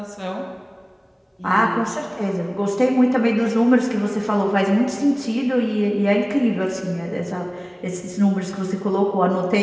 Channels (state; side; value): identical; both; correlation 1.00